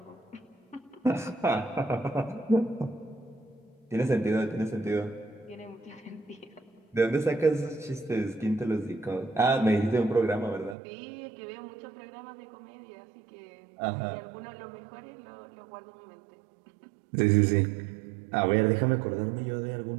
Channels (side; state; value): left; drops out; at 10.8 s